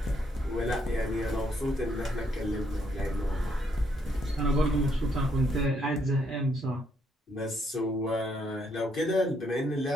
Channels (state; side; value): normal; both; correlation 0.73